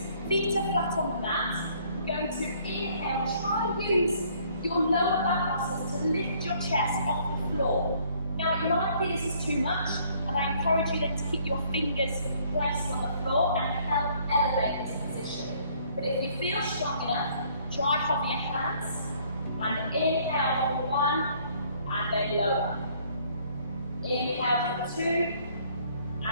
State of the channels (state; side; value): inverted; both; correlation -0.62